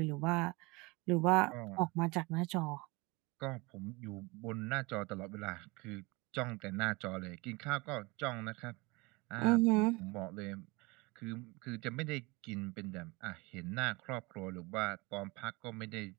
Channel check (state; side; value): quieter; left; 25.0 dB